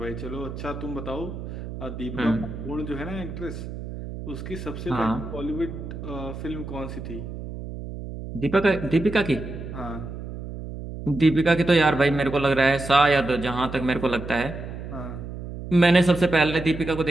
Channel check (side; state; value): right; noise; hum, 9 dB below the sound